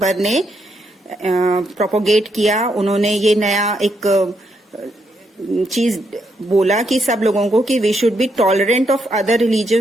ने प्रोपोगेट किया। उन्होंने ये नया एक चीज बोला कि सब लोगों को कि we should be tolerant of other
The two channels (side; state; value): both; normal; correlation 0.78